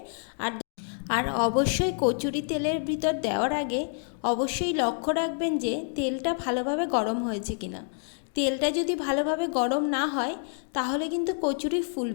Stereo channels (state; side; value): silent; right; 59 dB below the other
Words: আর আর অবশ্যই কচুরি তেলের ভিতর দেওয়ার আগে অবশ্যই লক্ষ্য রাখবেন যে তেলটা ভালোভাবে গরম হয়েছে কিনা। তেলটা যদি ভালোভাবে গরম না হয় তাহলে কিন্তু কচুরি